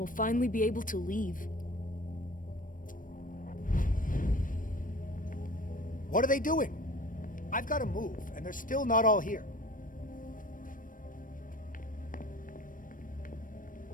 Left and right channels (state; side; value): late; right; 0.39 ms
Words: finally be able to leave. What are they doing? I've got to move, and they're still not all here.